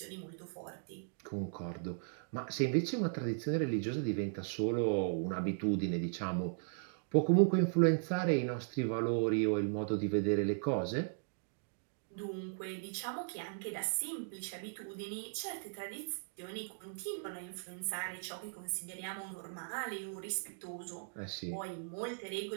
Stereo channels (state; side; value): silent; left; digital silence